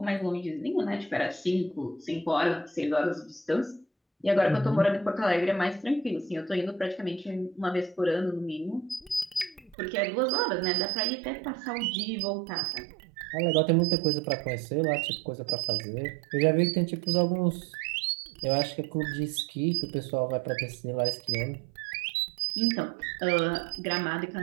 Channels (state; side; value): drops out; left; at 9.8 s